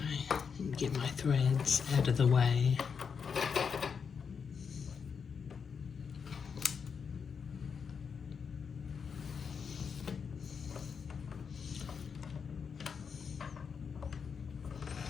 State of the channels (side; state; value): right; quieter; 6.2 dB